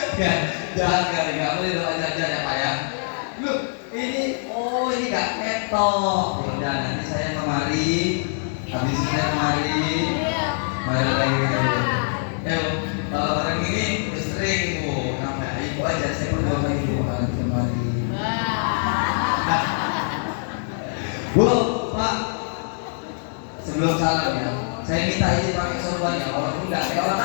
Ya, jangan nggak boleh doa aja ya Pak ya. Loh, ini nggak ketok. Ya udah nanti saya kemari, habis ini saya kemari lagi. Kalau orang ini sering Bu, sampai ibu aja saya pun coba ibu nanti kemari. Bu, Pak, sebelum salam ya, saya minta izin pakai sorbannya, walaupun nggak kayak orang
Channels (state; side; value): silent; right; digital silence